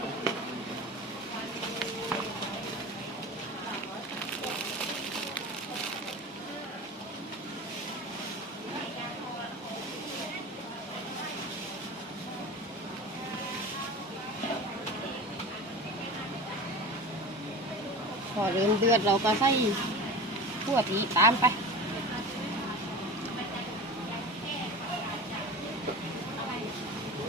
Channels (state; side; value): normal; both; correlation 0.32